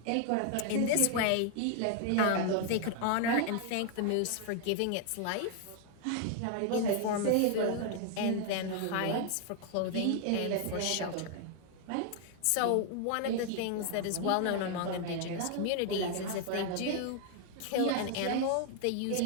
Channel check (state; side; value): different; both; correlation 0.00